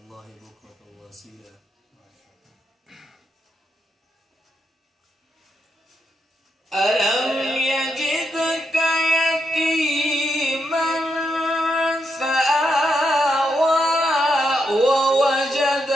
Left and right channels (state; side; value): normal; both; correlation 0.82